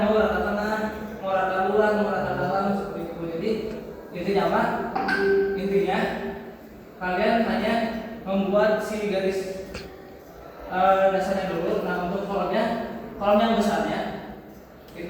mau rata tengah, mau rata luar, mau rata dalam seperti itu. Jadi intinya apa? Intinya kalian hanya membuat si garis dasarnya dulu. Nah, untuk kolom yang besarnya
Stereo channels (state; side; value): identical; both; correlation 1.00